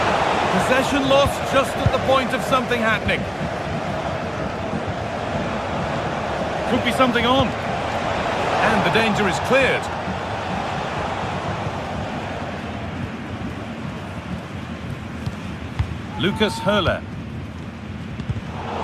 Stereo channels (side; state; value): both; identical; correlation 1.00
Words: Possession lost just at the point of something happening. Could be something on. And the danger is cleared. Lucas Höhler.